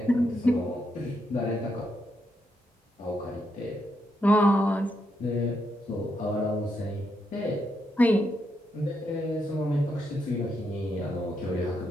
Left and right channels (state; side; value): normal; both; correlation 0.80